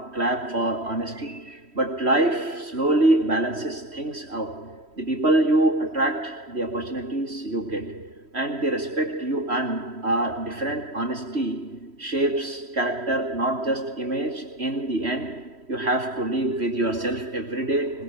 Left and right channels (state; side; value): late; left; 3.1 ms